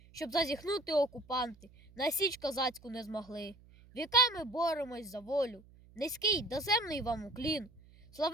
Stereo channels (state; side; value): noise; right; hum, 24 dB below the sound